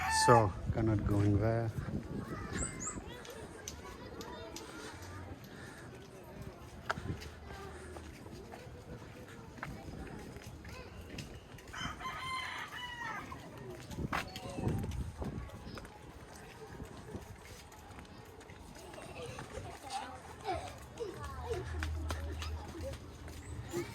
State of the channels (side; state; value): both; identical; correlation 1.00